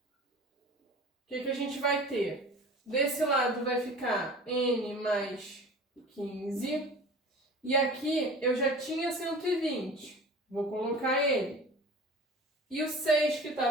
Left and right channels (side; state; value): both; normal; correlation 0.40